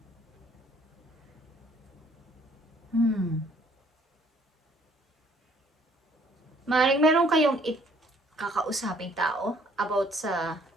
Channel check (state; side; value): normal; both; correlation 0.61